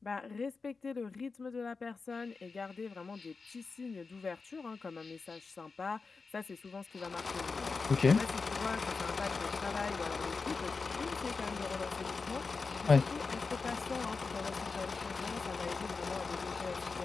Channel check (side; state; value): right; quieter; 4.4 dB